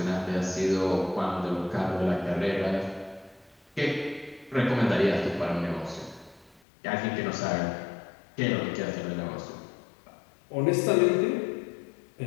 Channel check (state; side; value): drops out; right; at 6.6 s